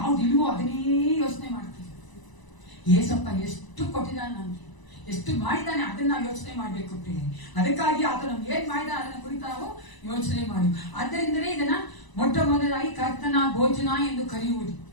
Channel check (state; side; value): late; right; 1.0 ms